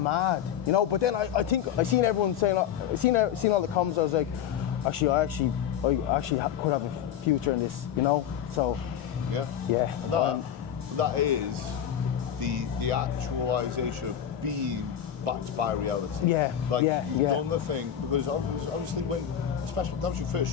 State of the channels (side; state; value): right; quieter; 9.6 dB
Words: you know. But then I think I seen everyone saying, seen all the comments. I was like, I actually could have a future in this, you know. So yeah. And that is the actualization of being backed by reality. Yeah. You've done the thing because obviously especially that was your